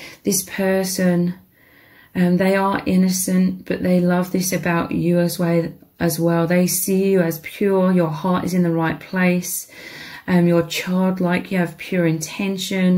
This person, they are innocent, but they love this about you as well. They see you as pure. Your heart is in the right place. You're childlike. You have pure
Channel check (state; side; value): identical; both; correlation 1.00